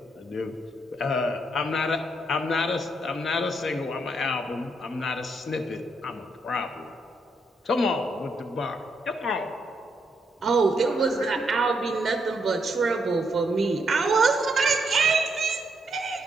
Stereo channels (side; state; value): both; normal; correlation 0.77